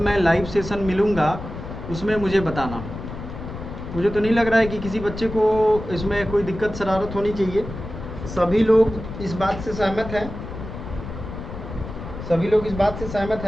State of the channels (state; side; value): noise; left; rumble, 10 dB below the sound